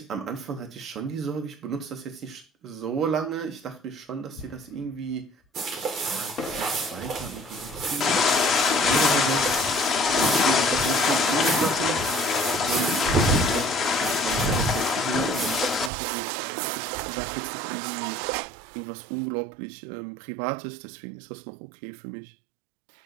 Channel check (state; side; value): drops out; left; at 15.9 s